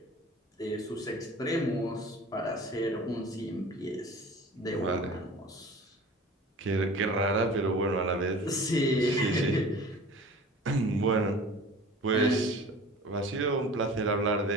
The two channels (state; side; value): normal; both; correlation 0.42